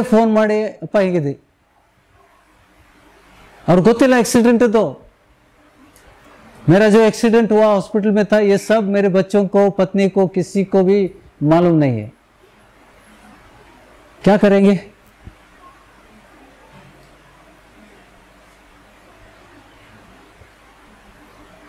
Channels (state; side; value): identical; both; correlation 1.00